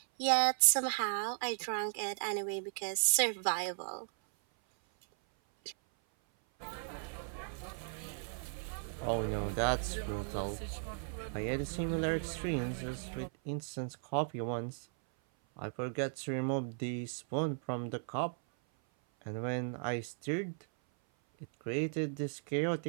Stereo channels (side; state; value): left; silent; 54 dB below the other